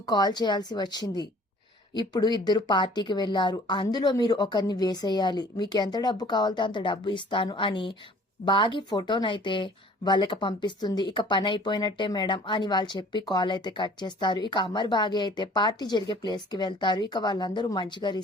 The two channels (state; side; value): normal; both; correlation 0.52